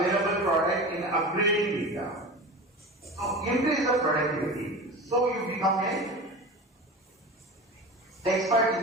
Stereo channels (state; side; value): normal; both; correlation 0.31